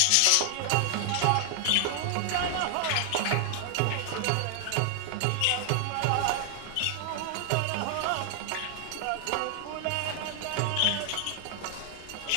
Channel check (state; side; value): different; both; correlation 0.00